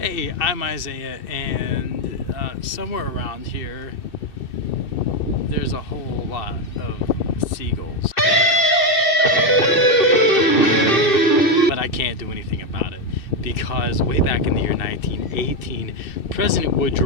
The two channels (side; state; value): right; late; 2.6 ms